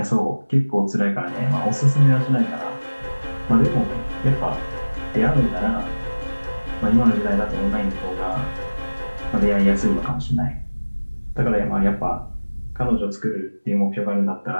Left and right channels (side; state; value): both; inverted; correlation -1.00